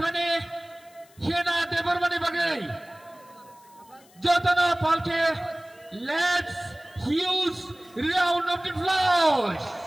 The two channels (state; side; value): noise; left; hiss, 28 dB below the sound